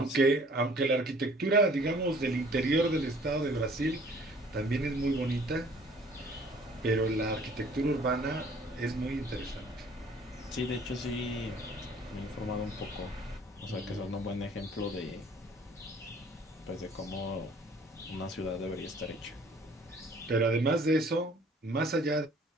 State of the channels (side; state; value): both; normal; correlation 0.55